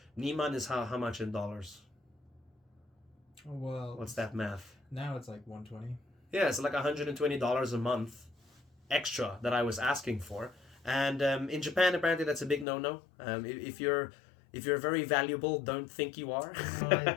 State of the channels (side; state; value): right; drops out; at 12.7 s